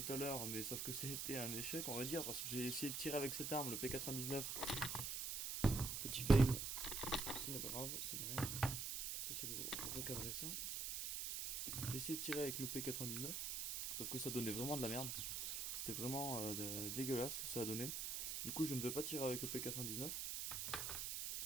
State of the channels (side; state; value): right; noise; hiss, 2 dB below the sound